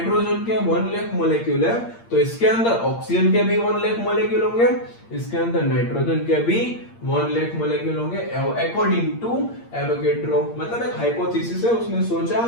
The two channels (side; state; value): right; late; 8.7 ms